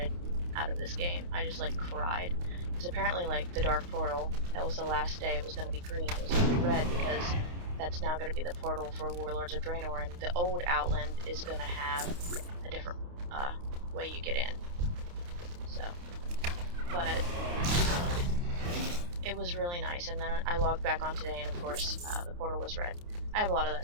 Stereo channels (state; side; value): late; left; 29 ms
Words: out of this game. I just like cried, because apparently like the Dark Portal, that was the last day, it was going to be green, it was going to be red, because that's now going to be the portal for Warlords of Draenor, and the old Outland is going to have a different way you get in. So, but it was really nice. And then I logged back on today, and of course the portal was red. I have a lot of that